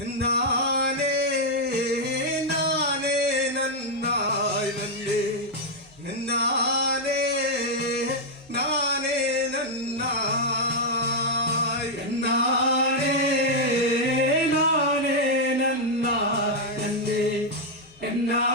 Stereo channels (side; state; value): both; normal; correlation -0.02